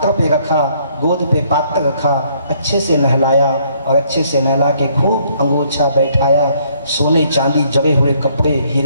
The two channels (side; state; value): both; inverted; correlation -0.66